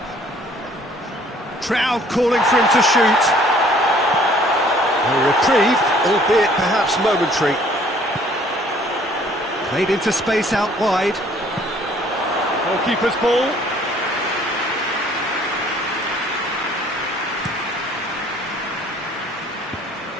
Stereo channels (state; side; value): normal; both; correlation 0.58